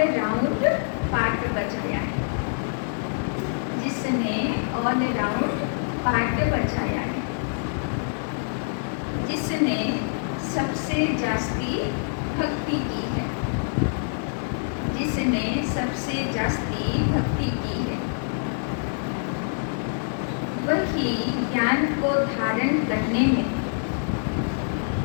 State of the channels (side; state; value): right; silent; digital silence